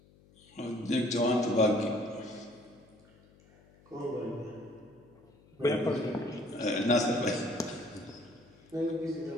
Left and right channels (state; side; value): noise; left; hum, 27 dB below the sound